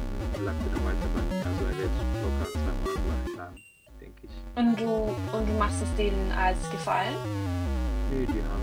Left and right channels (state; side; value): identical; both; correlation 1.00